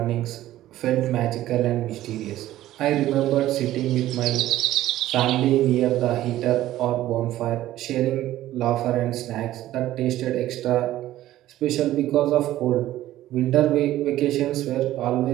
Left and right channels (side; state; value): left; quieter; 14.3 dB